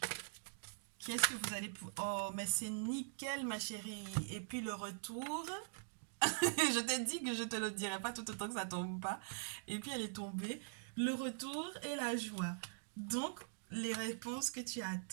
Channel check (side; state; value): left; silent; digital silence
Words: qu'est-ce que vous allez... oh, mais c'est nickel, ma chérie. Et puis le retour... je t'ai dit que je te le dirai pas tout autant que ça tombe pas. Et puis elle est tombée. Le retour et la joie. Donc, les réponses que tu